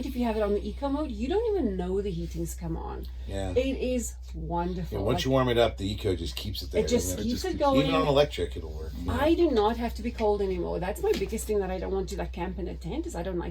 if you have it on the eco mode, you don't even know the heating's come on. Yeah. It is wonderful. Yeah, once you warm it up, the eco just keeps it there. it just doesn't keeps It it just going. Even on electric, it'll work. Yeah. I do not have to be cold anymore. That's my biggest thing that I don't want to like camp in a tent is I don't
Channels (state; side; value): identical; both; correlation 1.00